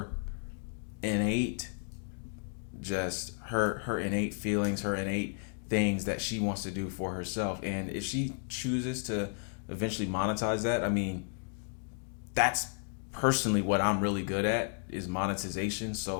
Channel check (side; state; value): right; silent; 56 dB below the other